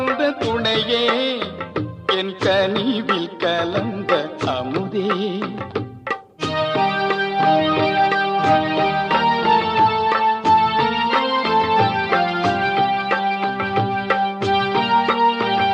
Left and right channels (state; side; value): identical; both; correlation 1.00